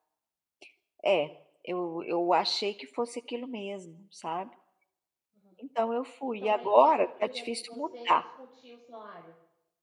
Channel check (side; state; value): both; identical; correlation 1.00